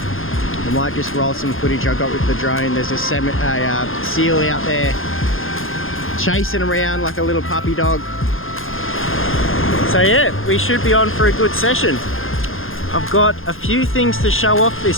might just roll some footage I got with the drone. There's a seal out there chasing around like a little puppy dog. So yeah, we should be on for a good session. I've got a few things to show off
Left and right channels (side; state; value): right; late; 0.60 ms